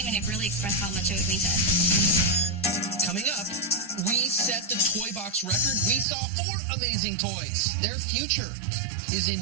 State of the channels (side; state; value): left; drops out; at 6.1 s